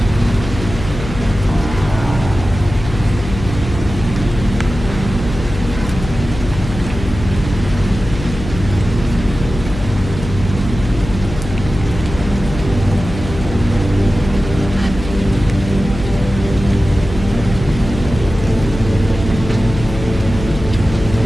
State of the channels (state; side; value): noise; left; hum, 9 dB below the sound